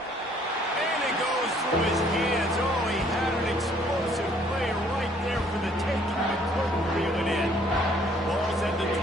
it goes through his hands. Oh, he had an explosive play right there for the taking, but couldn't reel it in. Ball's at the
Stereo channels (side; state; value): both; normal; correlation 0.61